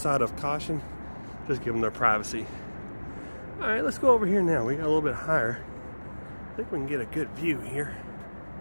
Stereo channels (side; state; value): both; inverted; correlation -1.00